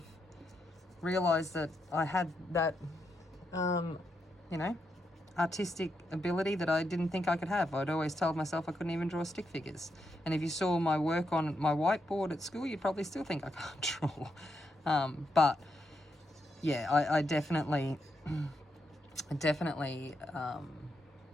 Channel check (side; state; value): both; normal; correlation 0.82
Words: realized that I had that artistic ability that I didn't think I could have. I'd always told myself I couldn't even draw stick figures. And if you saw my work on my whiteboard at school, you'd probably still think I can't draw. But yeah, I definitely,